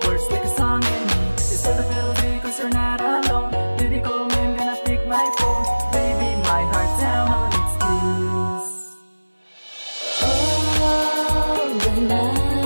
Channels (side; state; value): both; inverted; correlation -1.00